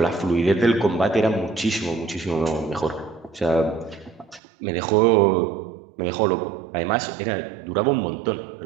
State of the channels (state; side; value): drops out; left; at 4.4 s